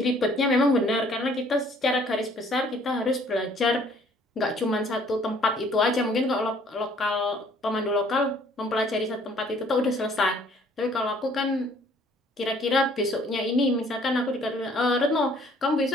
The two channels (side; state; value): both; normal; correlation 0.59